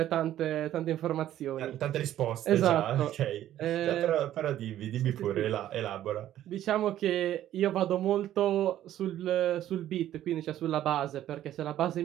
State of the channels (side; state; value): left; quieter; 12.4 dB